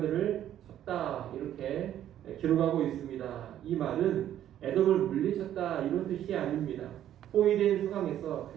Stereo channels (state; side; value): quieter; left; 11.3 dB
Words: 쳤다, 이렇게 기록하고 있습니다. 이 말은 에돔을 물리쳤다 이런 뜻이 아닙니다. 포위된 상황에서